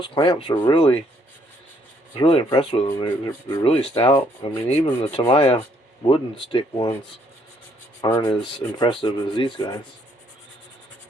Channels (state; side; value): normal; both; correlation 0.68